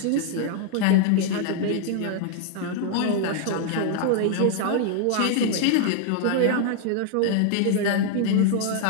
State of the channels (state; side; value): different; both; correlation 0.00